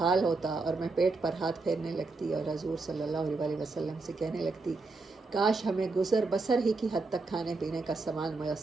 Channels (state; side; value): quieter; left; 3.7 dB